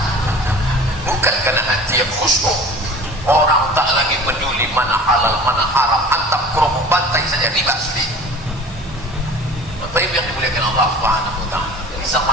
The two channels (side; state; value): both; normal; correlation 0.42